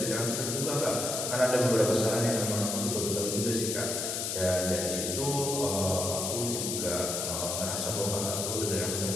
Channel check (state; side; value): noise; left; hiss, 2 dB below the sound